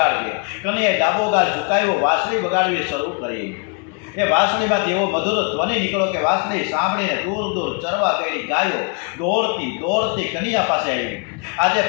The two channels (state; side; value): quieter; right; 38.3 dB